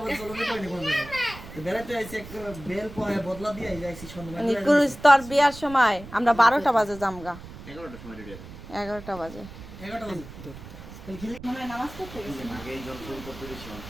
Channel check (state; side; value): noise; right; rumble, 15 dB below the sound